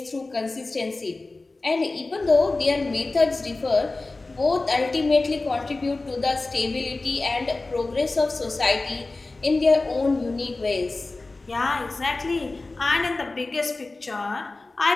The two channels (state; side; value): quieter; right; 3.3 dB